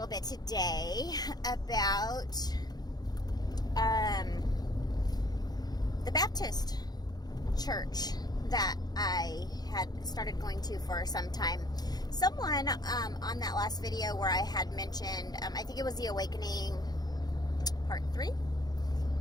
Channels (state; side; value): late; right; 0.19 ms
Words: bit today about the Baptist church that I had started going to for some time. Someone on that last video where I had mentioned, I think it was The Awakening Part 3.